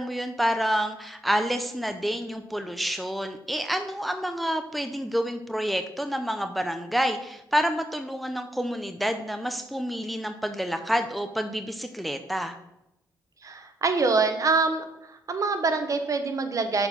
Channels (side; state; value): both; normal; correlation 0.76